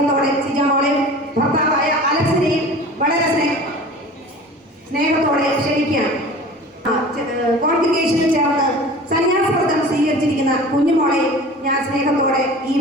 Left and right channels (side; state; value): both; normal; correlation 0.40